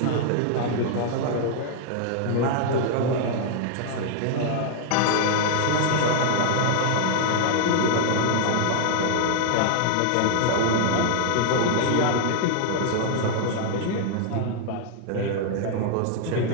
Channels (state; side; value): different; both; correlation -0.01